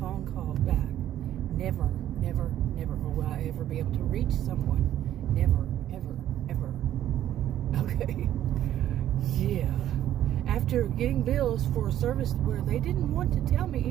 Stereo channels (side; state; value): left; quieter; 11.9 dB